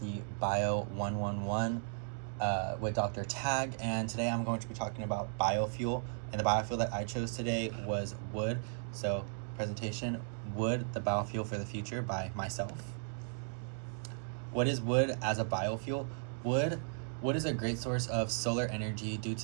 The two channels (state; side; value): silent; left; digital silence